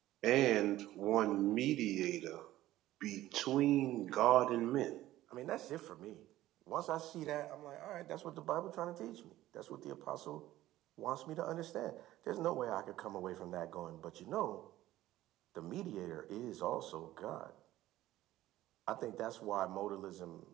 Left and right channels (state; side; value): quieter; left; 15.1 dB